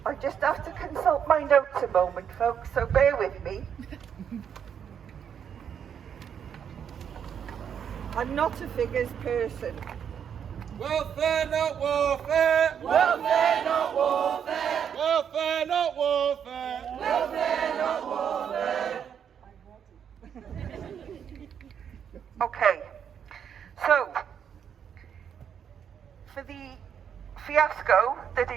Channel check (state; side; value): quieter; left; 8.1 dB